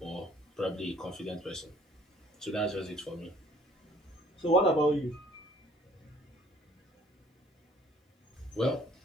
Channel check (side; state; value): both; normal; correlation 0.57